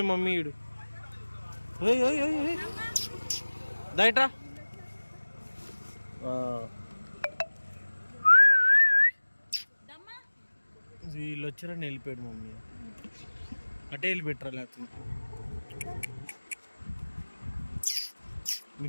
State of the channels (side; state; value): both; inverted; correlation -1.00